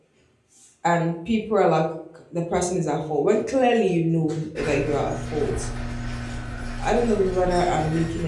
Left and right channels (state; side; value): identical; both; correlation 1.00